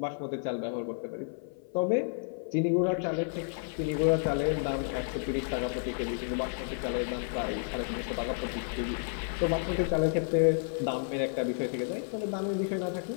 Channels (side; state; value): right; silent; 55 dB below the other